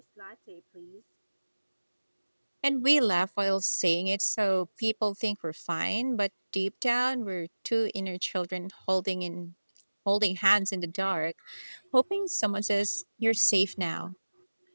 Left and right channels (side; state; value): both; inverted; correlation -1.00